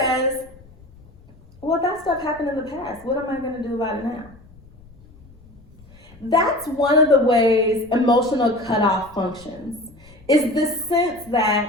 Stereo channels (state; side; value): noise; left; rumble, 24 dB below the sound